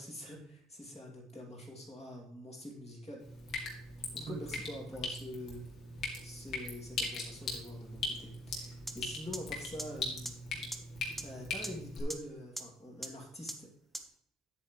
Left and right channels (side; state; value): both; normal; correlation 0.66